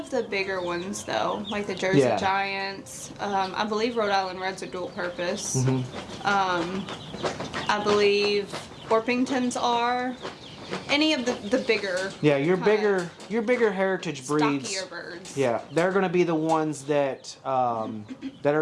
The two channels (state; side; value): identical; both; correlation 1.00